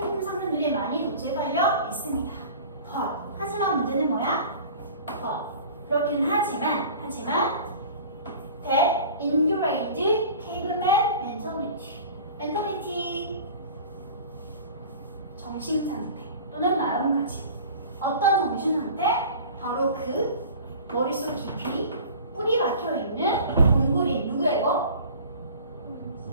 상품들이 많이 도착하여 있습니다. 하지만 문제는 뭐야? 그렇긴 하지만 that ingrained caveman mentality 정신 상태 또는 마음가짐. 어떤 정신 상태? 바로 그 머릿속 깊이 뿌리 박혀 있는 동굴이 누구야 이거?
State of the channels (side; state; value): both; inverted; correlation -0.42